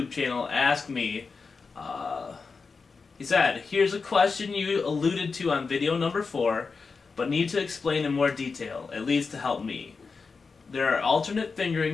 channel asked me, he said, "Here's a question you alluded to on video number 4, but need to explain in more detail, at least to help me. There are alternate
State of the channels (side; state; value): right; quieter; 4.7 dB